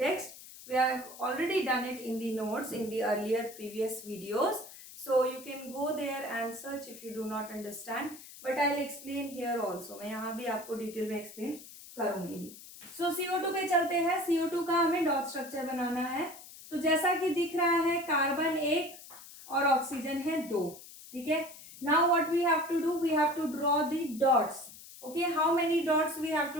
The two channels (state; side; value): noise; left; hiss, 17 dB below the sound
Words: we have already done it in the notes in the earlier previous videos. So you can go there and search if you do not understand. But I'll explain here also. मैं यहाँ भी आपको डिटेल में explain करूँगी. सो CO2 पे चलते हैं. CO2 का हमें डॉट स्ट्रक्चर बनाना है. तो जैसा कि दिख रहा है, कार्बन एक और ऑक्सीजन है दो. ठीक है. Now what we have to do, we have to draw the dots. Okay, how many dots we have